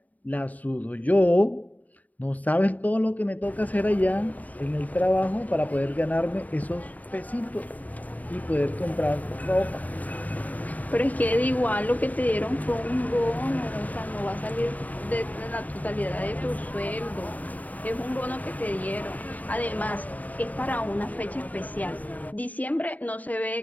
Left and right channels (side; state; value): right; late; 0.076 ms